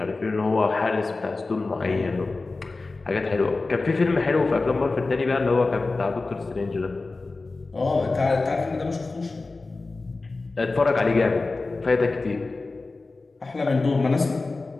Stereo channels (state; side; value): quieter; right; 3.6 dB